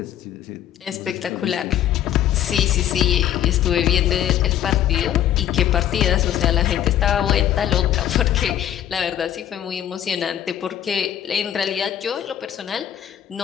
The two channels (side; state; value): right; quieter; 11.0 dB